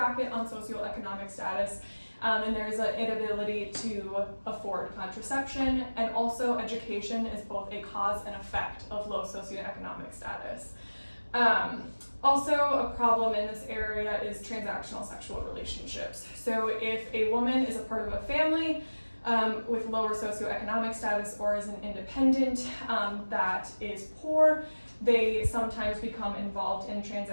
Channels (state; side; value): inverted; both; correlation -1.00